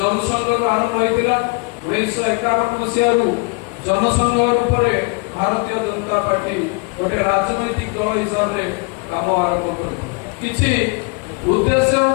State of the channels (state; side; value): quieter; right; 30.9 dB